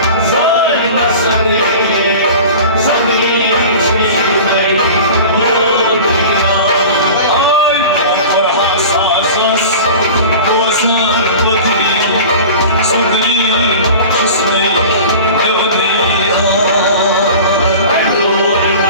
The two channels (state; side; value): inverted; both; correlation -0.38